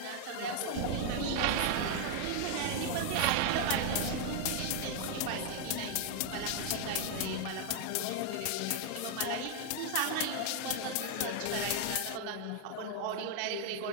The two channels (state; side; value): different; both; correlation 0.00